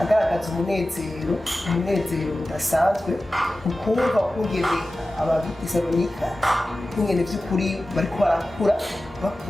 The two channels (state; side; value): normal; both; correlation 0.95